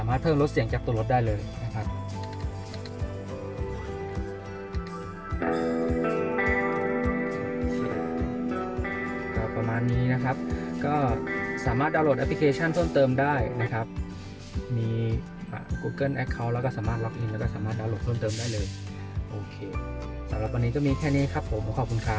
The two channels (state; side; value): identical; both; correlation 1.00